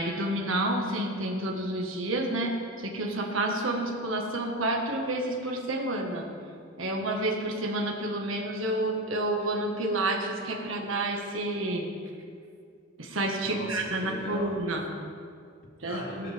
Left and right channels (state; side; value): normal; both; correlation 0.21